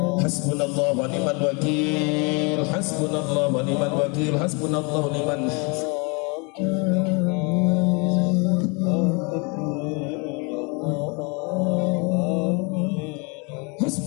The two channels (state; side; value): quieter; right; 31.9 dB